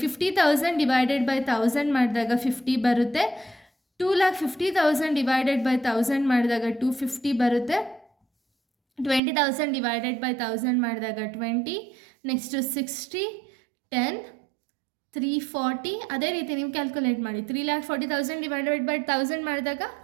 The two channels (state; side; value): drops out; left; at 9.2 s